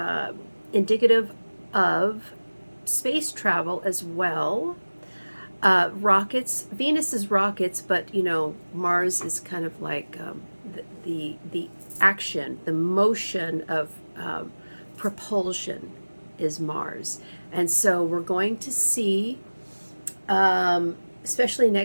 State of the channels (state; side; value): inverted; both; correlation -1.00